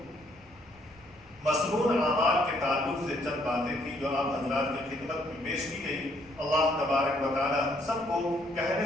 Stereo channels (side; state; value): left; noise; rumble, 27 dB below the sound